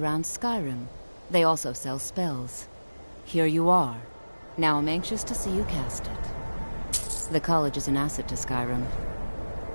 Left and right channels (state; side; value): inverted; both; correlation -1.00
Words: Skyrim. They also sell spells. Here you are. Now I'm anxious to see you cast it. The college is an asset to Skyrim.